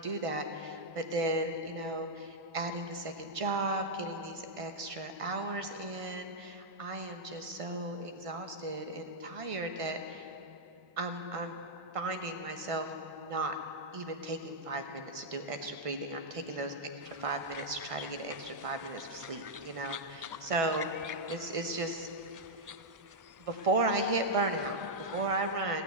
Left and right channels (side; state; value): left; late; 1.5 ms